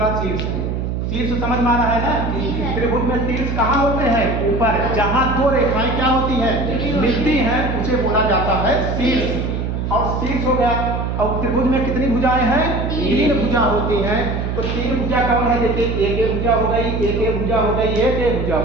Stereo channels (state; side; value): noise; right; hum, 2 dB below the sound